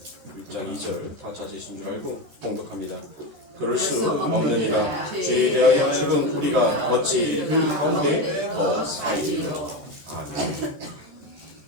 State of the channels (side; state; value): left; late; 14 ms